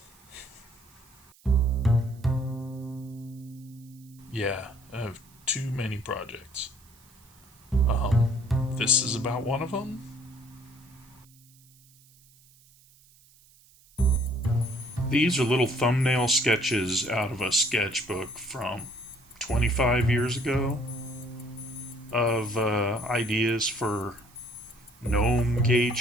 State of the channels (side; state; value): right; noise; hiss, 28 dB below the sound